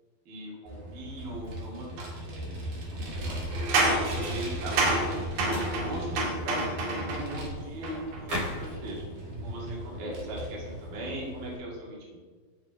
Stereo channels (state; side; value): late; left; 12 ms